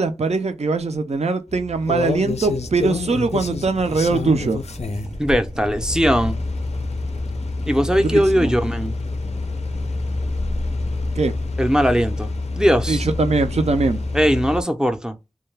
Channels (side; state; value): both; normal; correlation 0.84